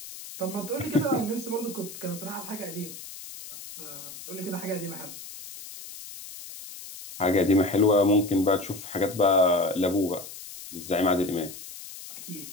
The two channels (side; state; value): left; noise; hiss, 13 dB below the sound